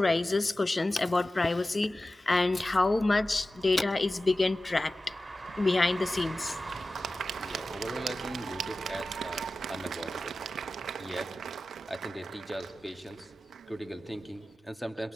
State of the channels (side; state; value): both; normal; correlation 0.95